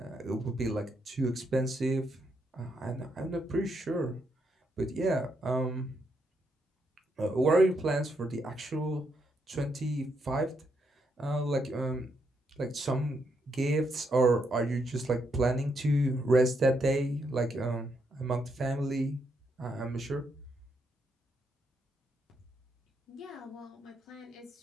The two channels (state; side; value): normal; both; correlation 0.78